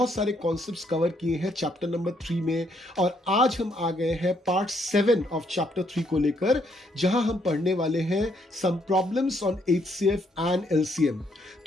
सारे कॉन्सेप्ट्स कवर किए हैं चैप्टर नंबर 3 में और आज हम आ गए हैं पार्ट 7 ऑफ चैप्टर 3 को लेकर, जहां हम पढ़ने वाले हैं some problems on HCF and LCM।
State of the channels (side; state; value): both; normal; correlation 0.72